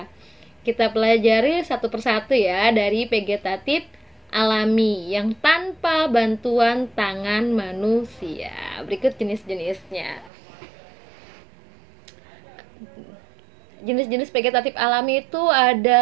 Kita pelajari satu persatu ya dari vegetatif alami yang tanpa bantuan tangan manusia. Berikut jenis-jenisnya. Jenis-jenis vegetatif alami itu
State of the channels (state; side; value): drops out; left; at 10.3 s